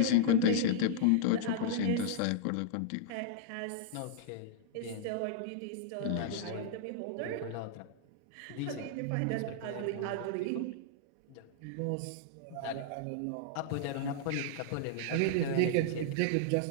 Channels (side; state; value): both; different; correlation -0.02